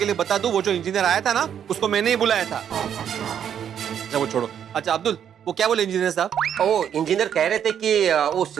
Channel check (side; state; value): left; quieter; 8.9 dB